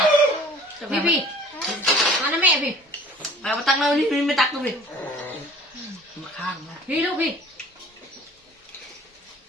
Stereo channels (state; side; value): normal; both; correlation 0.48